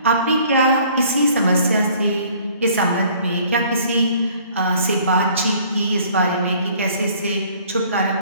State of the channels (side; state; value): both; inverted; correlation -0.56